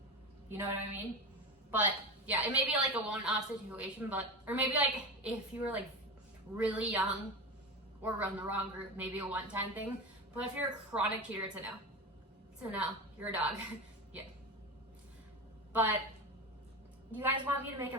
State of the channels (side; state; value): both; normal; correlation 0.23